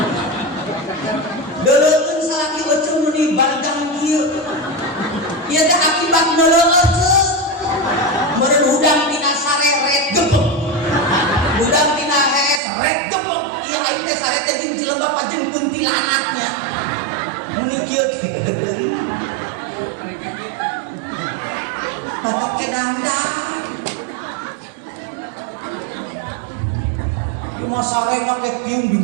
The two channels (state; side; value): drops out; left; at 12.6 s